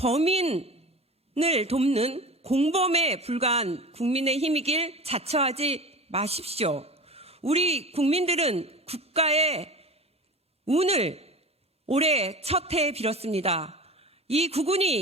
돕는 공범에 불과한 국민의힘이길 자처하지 마십시오. 우리 국민들은 국가의 운을 올해 첫 해에 빌었습니다. 이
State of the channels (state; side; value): normal; both; correlation 0.33